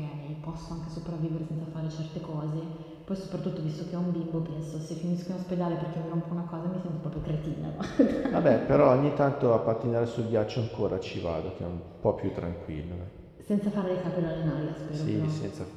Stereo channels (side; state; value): both; identical; correlation 1.00